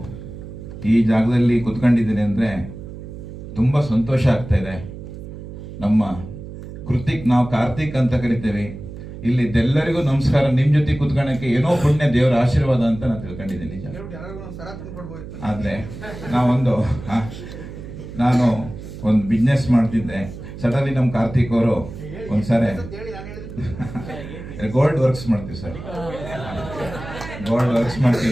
ಈ ಜಾಗದಲ್ಲಿ ಕುತ್ಕೊಂಡಿದ್ದೀನಿ ಅಂದರೆ ತುಂಬ ಸಂತೋಷ ಆಗ್ತಾ ಇದೆ. ನಮ್ಮ ಕೃತಿಕ್, ನಾವು ಕಾರ್ತಿಕ್ ಅಂತ ಕರಿತೇವೆ. ಇಲ್ಲಿದ್ದೆಲ್ಲರಿಗೂ ನಮಸ್ಕಾರ. ನಿಮ್ಮ ಜೊತೆ ಕುತ್ಕೊಳ್ಳೋಕ್ಕೆ ಏನೋ ಪುಣ್ಯ, ದೇವರ ಆಶೀರ್ವಾದ ಅಂತ ನಾನು ತಿಳ್ಕೊಂಡಿದ್ದೀನಿ. ನಿಜ. ಆದರೆ ನಾನು ಒಂದು ಬಿಸ್ನೆಸ್ ಮಾಡ್ತಿದ್ದೆ. ಸಡನ್ಲಿ ನಮ್ಮ ಕಾರ್ತಿಕ್ ಅವರು ಒಂದ್ಸರಿ ಗೋಲ್ಡ್ ವರ್ಕ್ಸ್ ಮಾಡ್ತೀವಿ ಸರ್, ಗೋಲ್ಡ್ ವರ್ಕ್ಸ್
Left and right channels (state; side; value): noise; right; hum, 12 dB below the sound